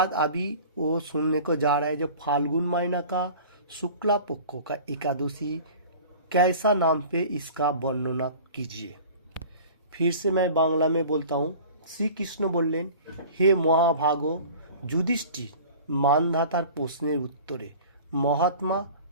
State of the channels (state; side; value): inverted; both; correlation -0.42